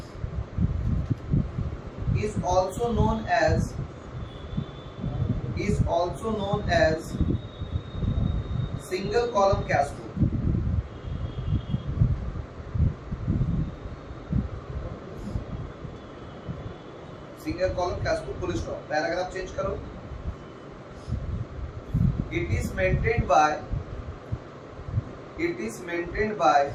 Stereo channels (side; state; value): both; identical; correlation 1.00